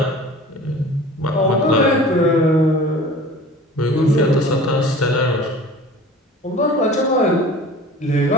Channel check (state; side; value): normal; both; correlation 0.42